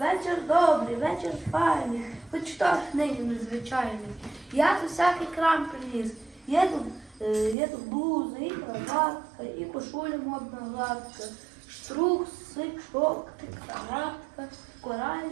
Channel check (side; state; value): left; drops out; at 7.6 s